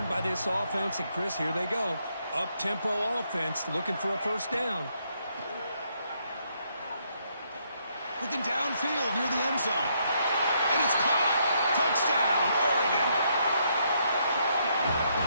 by this offense. And, Chris, here they go. Up-tempo offense looking for a 1st down. Looking downfield near the end zone. And it's caught. Touchdown, Oregon.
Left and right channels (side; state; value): both; inverted; correlation -0.74